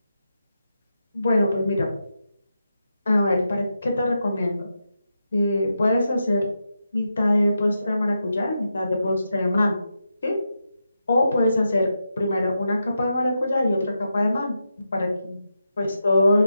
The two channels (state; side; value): inverted; both; correlation -0.87